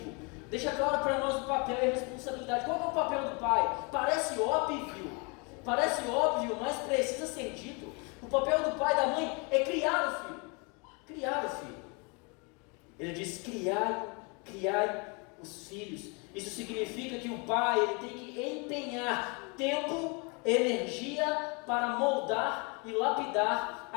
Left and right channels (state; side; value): quieter; right; 32.1 dB